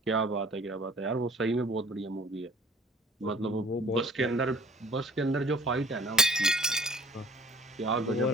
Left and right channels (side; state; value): both; normal; correlation 0.50